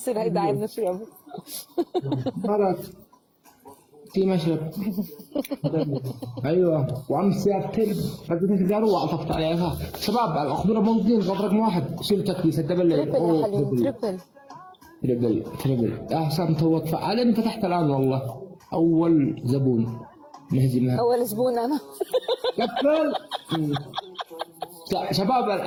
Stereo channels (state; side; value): identical; both; correlation 1.00